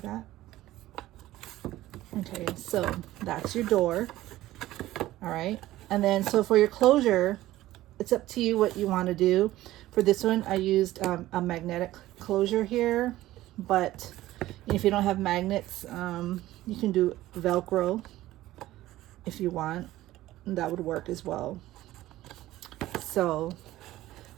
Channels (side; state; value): left; quieter; 15.7 dB